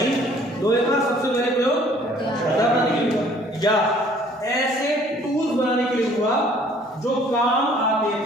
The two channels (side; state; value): both; normal; correlation 0.57